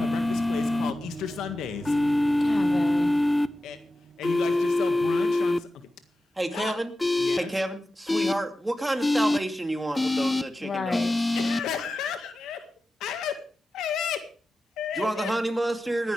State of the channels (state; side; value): normal; both; correlation 0.93